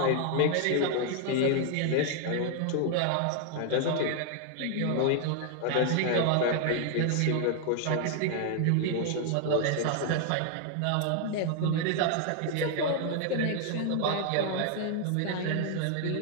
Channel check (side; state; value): both; different; correlation 0.00